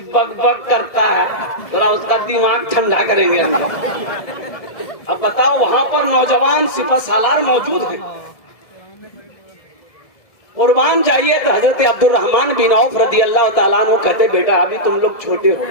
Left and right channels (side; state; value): right; late; 1.7 ms